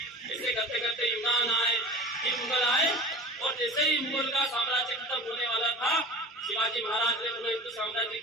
ऐसे करते करते यूनान आए, फिर मुगल आए और जैसे ही मुगल का साम्राज्य खत्म होने वाला था शिवाजी महाराज ने पुनः हिंदू साम्राज्य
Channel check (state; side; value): normal; both; correlation 0.36